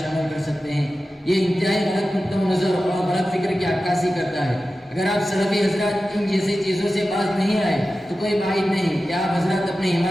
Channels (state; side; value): normal; both; correlation 0.94